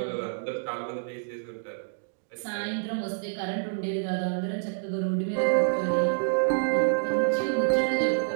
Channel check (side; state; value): left; silent; digital silence